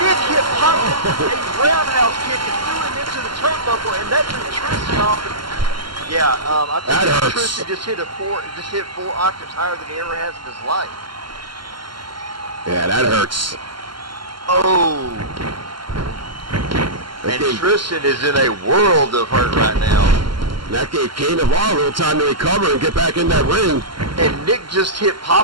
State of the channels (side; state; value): left; late; 0.72 ms